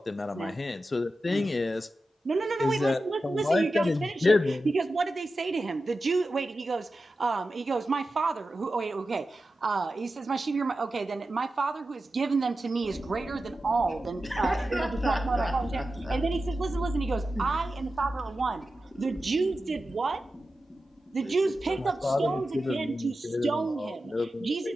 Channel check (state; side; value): normal; both; correlation 0.92